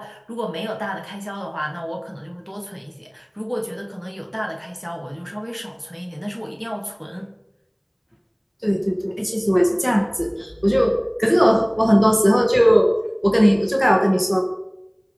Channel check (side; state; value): both; identical; correlation 1.00